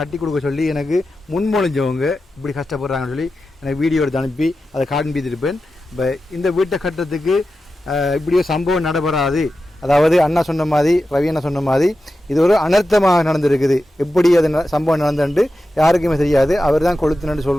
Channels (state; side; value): normal; both; correlation 0.92